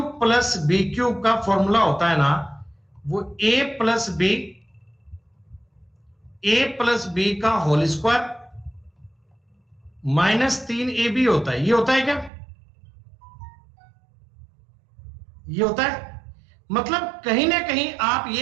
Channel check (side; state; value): left; drops out; at 12.3 s